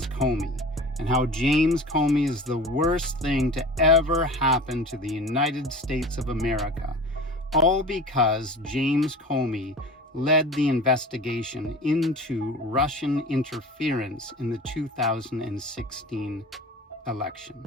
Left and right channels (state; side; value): normal; both; correlation 0.37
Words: Comey and how James Comey is the worst thing to ever happen to the United States of America, all because James Comey led the investigation into Russian interference in the 2016 election,